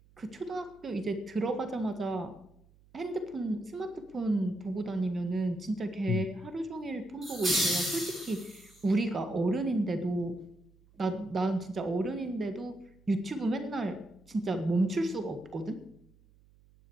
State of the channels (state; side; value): noise; right; hum, 28 dB below the sound